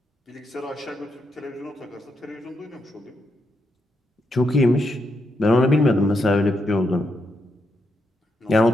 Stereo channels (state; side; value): normal; both; correlation 0.81